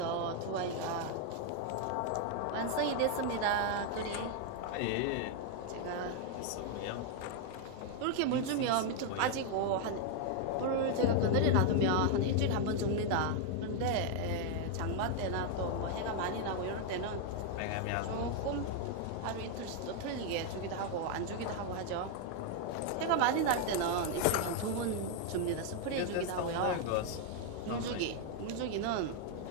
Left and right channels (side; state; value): both; different; correlation 0.00